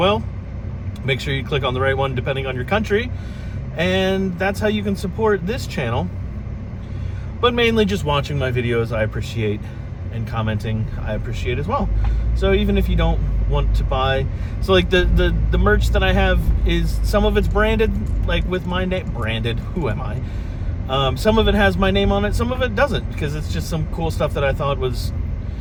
Make sure you click on the right one depending on your country, and that's how you can support this channel. But mainly just watching my videos I appreciate, and commenting I appreciate as well. So even if you don't want to buy, so like the merch that I have is, some of it's branded, like with my name, branded, who am I? Some of it has my name on it, some of it doesn't, because it's just some cool stuff that I thought was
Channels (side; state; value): both; identical; correlation 1.00